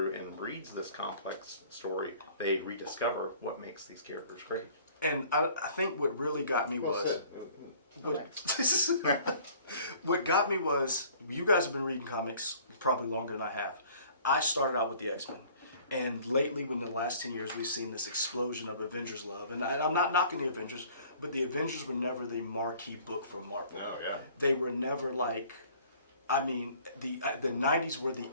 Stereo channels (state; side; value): inverted; both; correlation -0.53